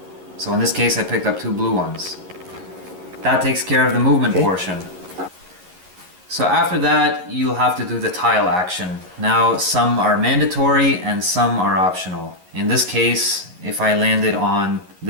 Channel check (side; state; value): left; late; 11 ms